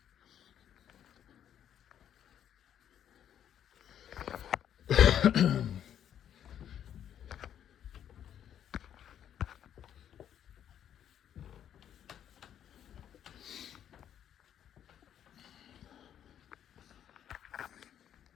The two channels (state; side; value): quieter; right; 9.8 dB